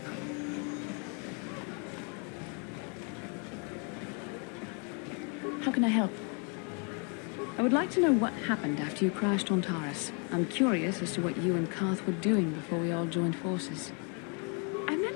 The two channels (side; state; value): right; quieter; 36.7 dB